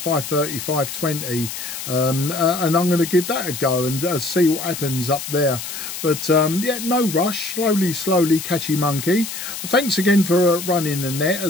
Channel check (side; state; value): left; noise; hiss, 8 dB below the sound